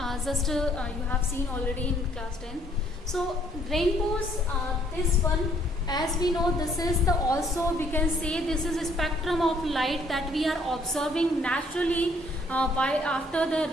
have seen already in class 10. So rainbows, this one, as we know, this is the, also we can say this is a spectrum of light that we are observing naturally after the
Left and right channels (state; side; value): normal; both; correlation 0.64